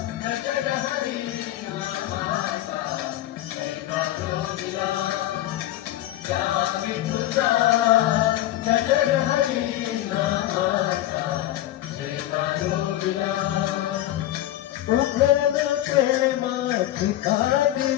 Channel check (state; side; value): quieter; right; 14.1 dB